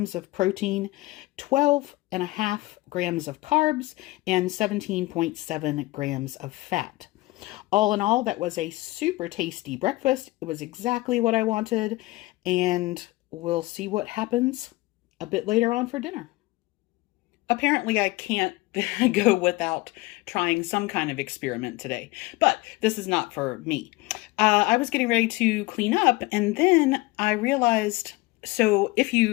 of protein, 12.5 grams of carbs, and 17.7 grams of fat. All in all, that was a super tasty breakfast. It was exactly what I wanted, and we'll see what happens a bit later on for dinner. Apparently, I can't go without trying some kind of experiment today, but this is not for me. I was getting ready to clean up, and then I realized, so if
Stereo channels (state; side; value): quieter; right; 20.6 dB